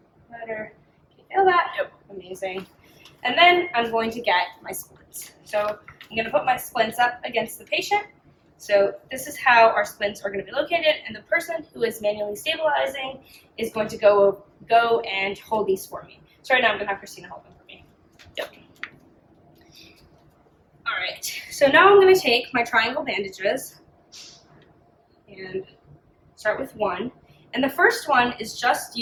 motor, can you feel that? Yep, amazing. And then I'm going to get my splints. So I'm going to put my splints up against the patient. So this is how our splints are going to be located, and the person who is manually stabilizing is going to go and hold these for me. So right now I'm going to have Christina hold them for me. Yep. All right, so now I'm going to take my triangle bandages and start with one. And the first one is just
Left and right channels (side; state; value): both; identical; correlation 1.00